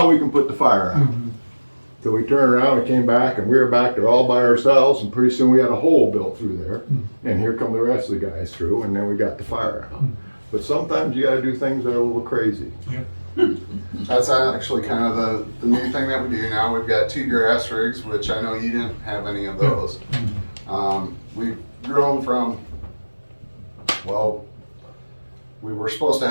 we can put the fire out." So we turned around and came back, and we were back there all by ourselves, and pretty soon we had a hole built through there, and here come the rest of the guys through, and then we got the fire out. But sometimes you gotta do things that are a little crazy. that's actually kind of the new thing that we do now. We've got 2 grass rigs, which I know you didn't have any of those. We've grown from, well, we were supposed to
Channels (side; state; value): both; inverted; correlation -1.00